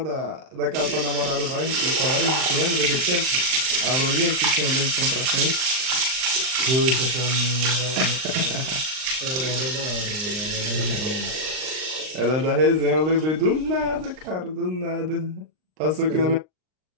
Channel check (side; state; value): left; late; 39 ms